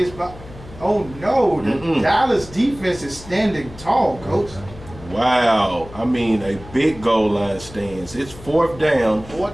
blocked. Oh, no. The Dallas defense is standing tall, Coach. Wow. I mean, a big goal line stance. It's 4th down.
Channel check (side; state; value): left; noise; hum, 17 dB below the sound